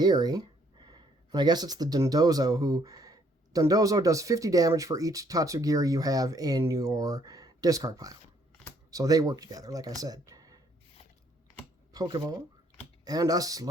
And I guess it's the Dondozo Dondozo does 50 damage for each Tatsugiri you have in your discard pile. So they work together, like I said. Pokeball. And a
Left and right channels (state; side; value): normal; both; correlation 0.66